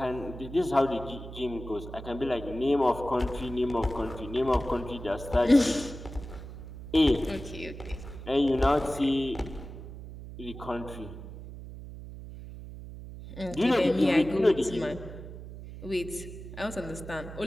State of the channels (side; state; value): right; noise; hum, 12 dB below the sound